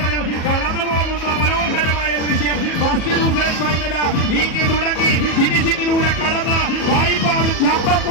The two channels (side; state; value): right; late; 37 ms